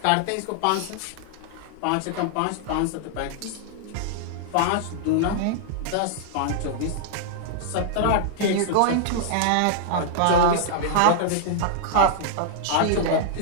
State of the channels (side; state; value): both; different; correlation -0.01